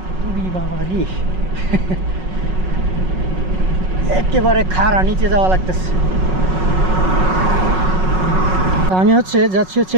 বাবা রে, একেবারে খাড়া নিচে যাওয়া লাগতেছে। আমি যাচ্ছি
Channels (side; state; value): left; late; 5.4 ms